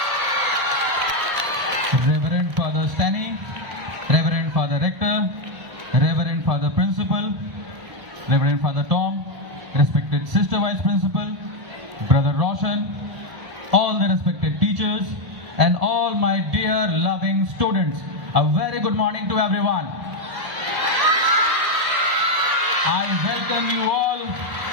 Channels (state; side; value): late; left; 1.4 ms